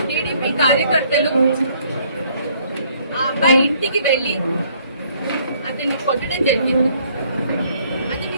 టీడీపీ కార్యకర్తలు ఆ అబ్బాయి ఇంటికి వెళ్లి అతన్ని కొట్టడం జరిగింది.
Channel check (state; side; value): inverted; both; correlation -0.64